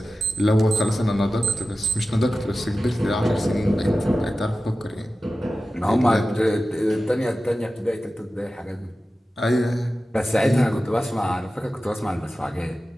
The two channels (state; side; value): normal; both; correlation 0.94